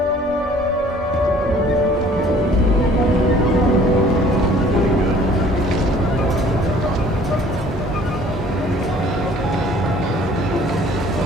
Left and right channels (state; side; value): normal; both; correlation 0.54